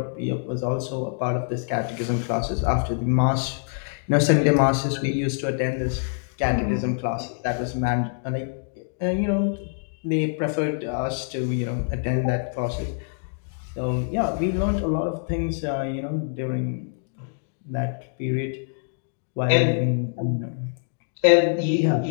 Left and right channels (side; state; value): right; silent; digital silence